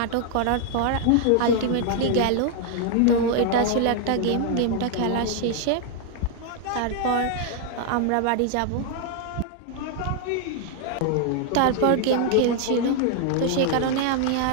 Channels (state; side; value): different; both; correlation 0.00